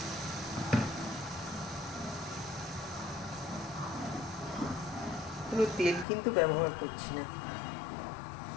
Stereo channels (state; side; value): drops out; right; at 6.1 s